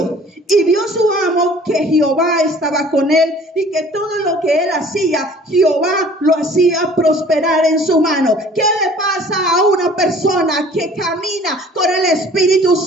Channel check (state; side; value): normal; both; correlation 0.51